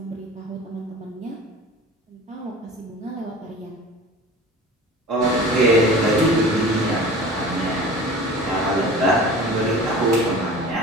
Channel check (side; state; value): both; normal; correlation 0.39